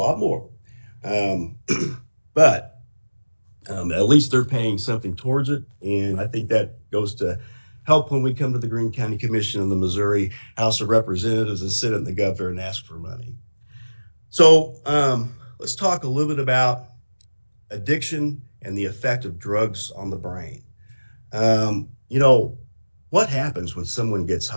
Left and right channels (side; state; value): both; inverted; correlation -1.00